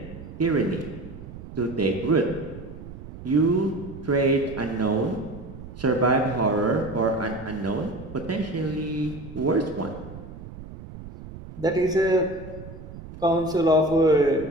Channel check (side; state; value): right; noise; rumble, 14 dB below the sound